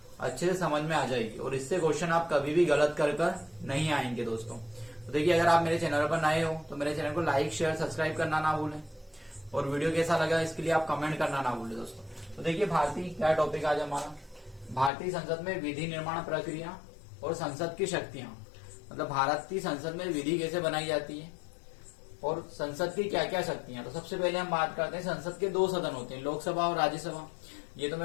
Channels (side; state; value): right; drops out; at 14.9 s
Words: अच्छे से समझ में आ जाएगी और इससे क्वेश्चन आप कभी भी गलत कर नहीं आएंगे दोस्तों। तो देखिए, अगर आप मेरे चैनल पर नए हो तो मेरे चैनल को लाइक, शेयर, सब्सक्राइब करना ना भूलें और वीडियो कैसा लगा इसके लिए आप कमेंट करना ना भूलें दोस्तों। तो देखिए, भारतीय क्या टॉपिक आज हमारा, भारतीय संसद में विधि निर्माण प्रक्रिया और संसद की शक्तियां। मतलब भारतीय संसद में विधि कैसे बनाई जाती है और संसद की क्या क्या शक्तियां। तो सबसे पहले हम बात करते हैं, संसद के दो सदन होते हैं, लोकसभा और राज्यसभा। ये तो